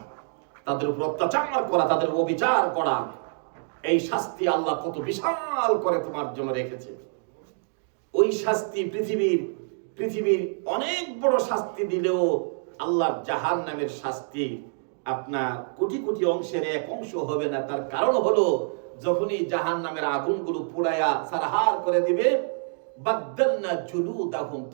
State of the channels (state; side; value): silent; left; digital silence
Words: তাদের উপর অত্যাচার করা, তাদের অবিচার করা, এই শাস্তি আল্লাহ কত বিশাল করে তোমার জন্য রেখেছে। ওই শাস্তি পৃথিবীর অনেক বড় শাস্তি দিলেও আল্লাহর জাহান্নামের শাস্তি আপনার কোটি কোটি অংশের এক অংশ হবে না। তার কারণ হলো যখনই জাহান্নামের আগুনগুলো পুড়ায়া সারহার করে দিবে, বাদদালনা জুলুদাহুম,